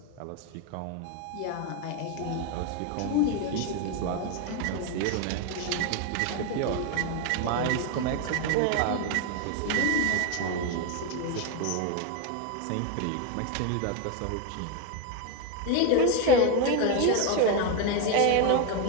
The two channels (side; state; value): both; different; correlation 0.02